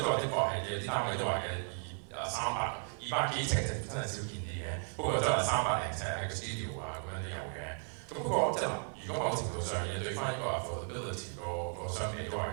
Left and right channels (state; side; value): quieter; left; 39.3 dB